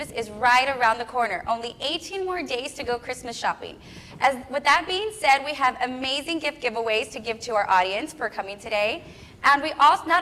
is right around the corner. Only 18 more days to go Christmas shopping. With that being said, we have amazing gift giveaways to give to our audience for coming today. And we also,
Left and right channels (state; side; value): identical; both; correlation 1.00